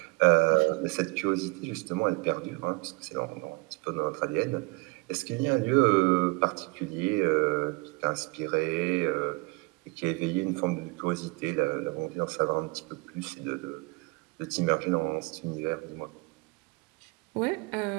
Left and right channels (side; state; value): left; quieter; 27.1 dB